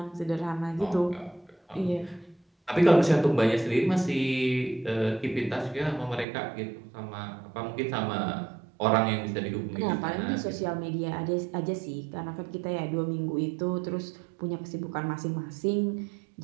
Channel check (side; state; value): left; drops out; at 6.2 s